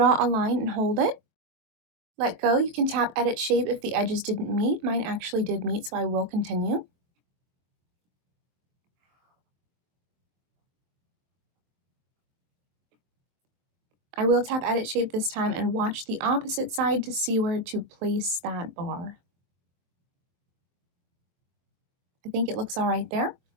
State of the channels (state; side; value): late; left; 23 ms